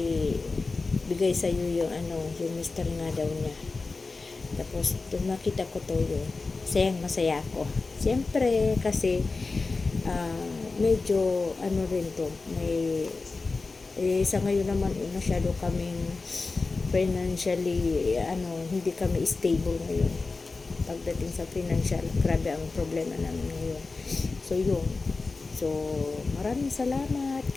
bigay sa iyo yung mister nga daw niya. Tapos, nakita ko to yun. Masaya ako. Siyempre, kasi, medyo, rin to, may, sa ngayon naman masyado kaming financially hindi kami stable ngayon pagdating sa financial. Grabe ang problema namin ngayon. So yun, so maraming salamat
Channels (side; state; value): right; quieter; 3.9 dB